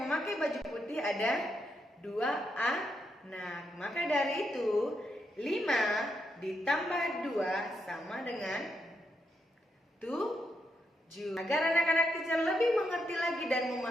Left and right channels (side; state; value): both; normal; correlation 0.81